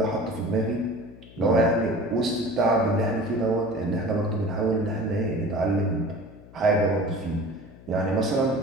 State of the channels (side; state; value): left; noise; hum, 21 dB below the sound